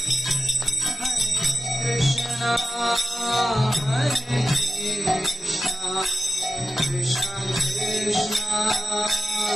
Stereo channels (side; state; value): both; normal; correlation 0.92